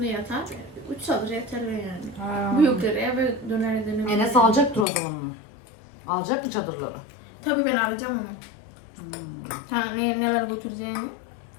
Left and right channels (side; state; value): right; drops out; at 4.9 s